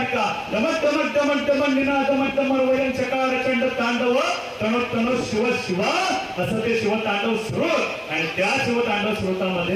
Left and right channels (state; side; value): identical; both; correlation 1.00